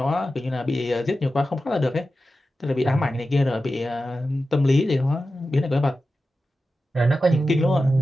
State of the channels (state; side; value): normal; both; correlation 0.93